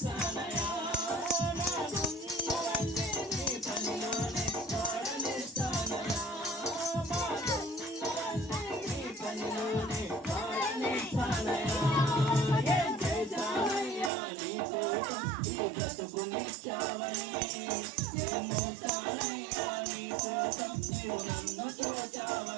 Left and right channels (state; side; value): drops out; left; at 14.1 s